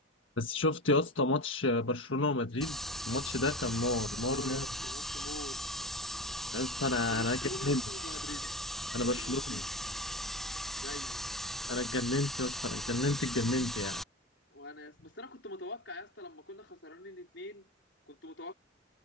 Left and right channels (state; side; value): normal; both; correlation 0.26